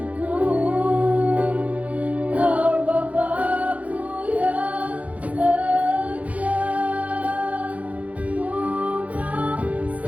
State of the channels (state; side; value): late; left; 0.068 ms